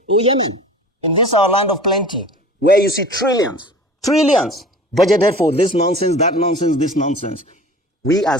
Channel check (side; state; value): both; normal; correlation 0.41